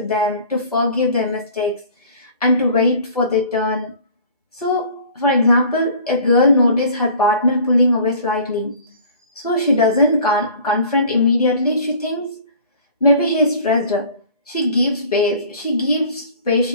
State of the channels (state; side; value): inverted; both; correlation -0.47